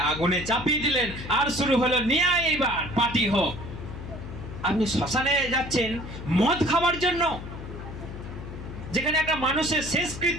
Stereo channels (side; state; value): left; noise; hum, 10 dB below the sound